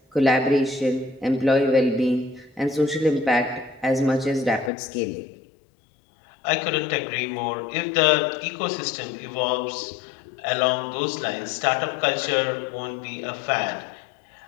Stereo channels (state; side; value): drops out; right; at 4.7 s